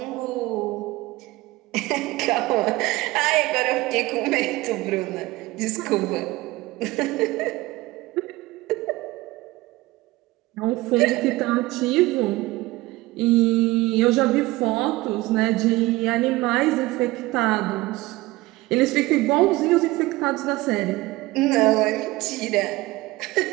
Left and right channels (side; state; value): left; quieter; 19.7 dB